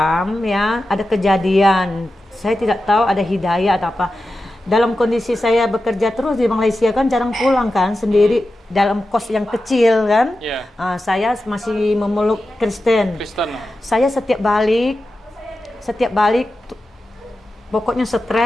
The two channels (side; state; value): both; normal; correlation 0.92